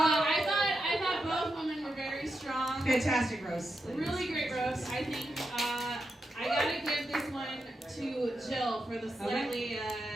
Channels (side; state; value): both; normal; correlation 0.86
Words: thought both women were very strong. Fantastic roast. Really great roast. I think I gotta give this one to Jill for the slightly